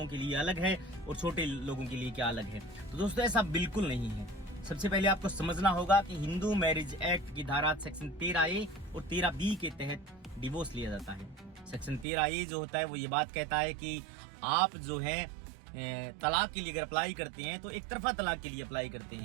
के लिए अलग है और छोटे लोगों के लिए क्या अलग है? तो दोस्तों, ऐसा बिल्कुल नहीं है। सबसे पहले आपको समझना होगा कि हिंदू मैरिज एक्ट की धारा सेक्शन 13A और 13B के तहत डिवोर्स लिया जाता है। सेक्शन 13A जो होता है वो ये बात कहता है कि आप जो है तलाक के लिए अगर अप्लाई करते हैं तो एक तरफा तलाक के लिए अप्लाई करते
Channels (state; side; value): drops out; left; at 12.1 s